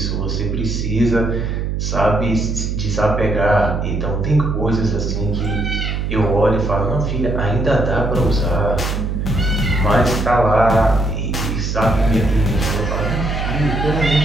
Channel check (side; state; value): right; noise; hum, 1 dB below the sound